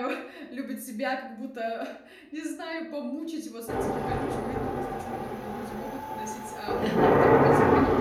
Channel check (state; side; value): identical; both; correlation 1.00